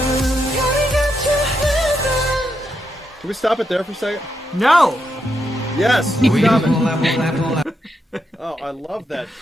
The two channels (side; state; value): both; normal; correlation 0.82